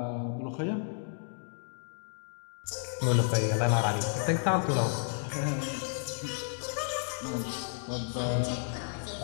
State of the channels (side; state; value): right; silent; digital silence